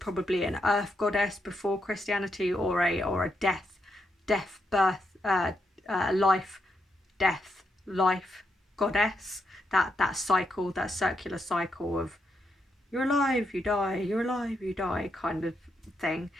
an earth goddess before Christianity, or a life goddess. That cycle, that circular cycle of you're alive, you die, you're alive, you die kind of thing.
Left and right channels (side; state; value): both; normal; correlation 0.81